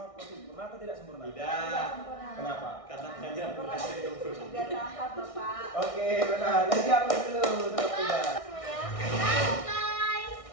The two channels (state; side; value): late; right; 1.6 ms